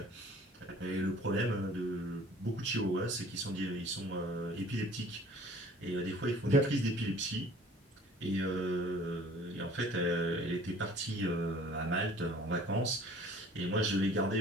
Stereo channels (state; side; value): normal; both; correlation 0.50